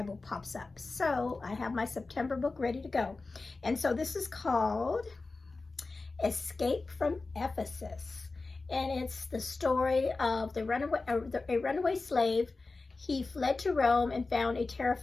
pops up. So I have my September book ready to go. And so this is called Escape from Ephesus. And it's the story of a runaway slave. He fled to Rome and found a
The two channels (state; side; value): quieter; right; 3.7 dB